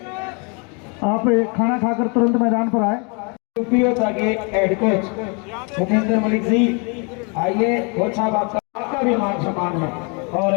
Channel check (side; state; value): right; quieter; 34.1 dB